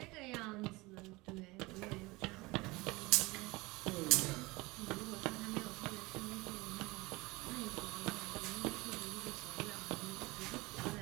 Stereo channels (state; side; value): quieter; left; 23.0 dB